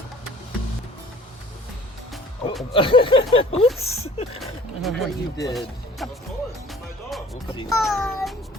Oops. What you did. Of course, it's my dog. Oopsie.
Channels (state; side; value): normal; both; correlation 0.49